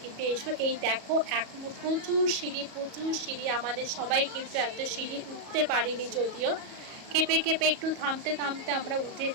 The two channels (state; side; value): late; left; 37 ms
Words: কিন্তু এসো। এই দেখো এখনো প্রচুর সিঁড়ি, আমাদের সবাই কিন্তু এত সিঁড়ি উঠতে পারিনি, যদিও কেঁপে কেঁপে একটু থামতে থামতে আমরা